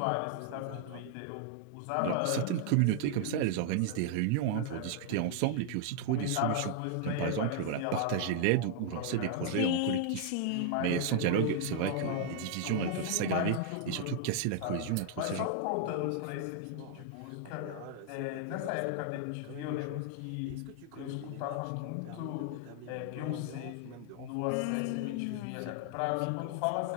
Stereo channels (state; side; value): different; both; correlation -0.01